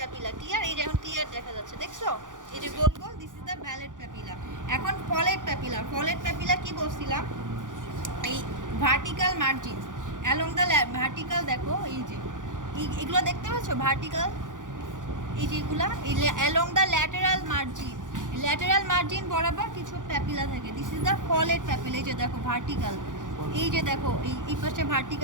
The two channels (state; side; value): late; left; 0.88 ms